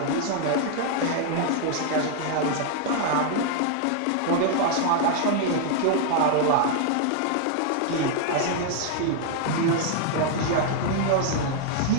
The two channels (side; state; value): both; different; correlation 0.00